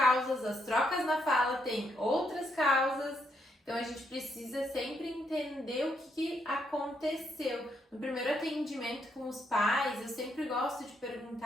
as trocas na fala tem outras causas. Então, a gente precisa sempre entender o que aconteceu. No primeiro atendimento com os pais, eu sempre gosto de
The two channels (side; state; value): both; normal; correlation 0.76